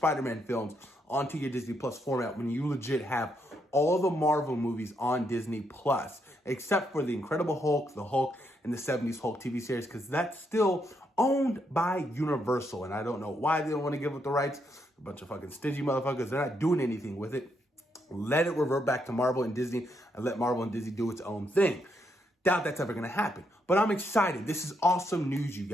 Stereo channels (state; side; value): normal; both; correlation 0.77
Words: films onto your Disney Plus format when you legit have all the Marvel movies on Disney Plus, except for the Incredible Hulk, the Hulk, and the 70s Hulk TV series, because that's still owned by Universal, and I don't know why they don't want to give up the rights. A bunch of fucking stingy motherfuckers. They're not doing anything with it. Let it revert back to Marvel and Disney, and let Marvel and Disney do its own thing. Doubt that's ever going to happen. But I'm excited. This is awesome news, you